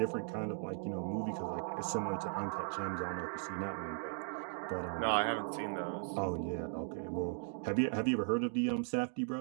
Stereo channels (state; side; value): silent; left; 53 dB below the other